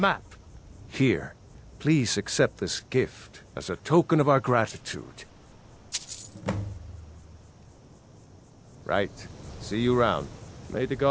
Here, please accept this gift as a token of our gratitude. Right. See you round. May the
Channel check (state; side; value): identical; both; correlation 1.00